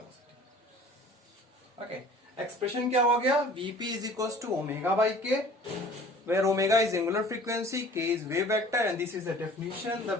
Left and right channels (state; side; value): normal; both; correlation 0.47